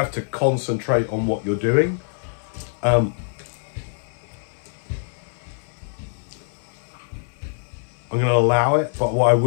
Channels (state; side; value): silent; right; 56 dB below the other